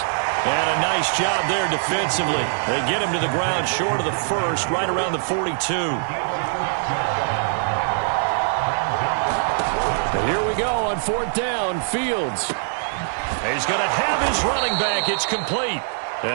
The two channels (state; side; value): silent; left; 63 dB below the other